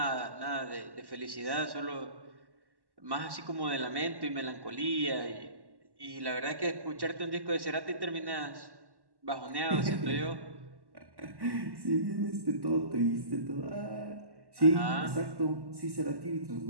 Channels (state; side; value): late; left; 1.1 ms